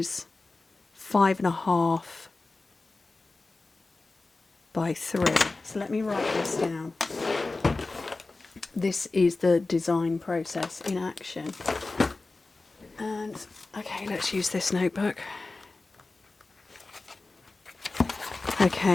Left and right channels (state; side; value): quieter; right; 3.4 dB